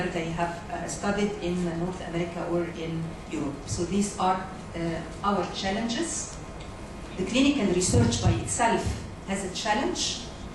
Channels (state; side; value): identical; both; correlation 1.00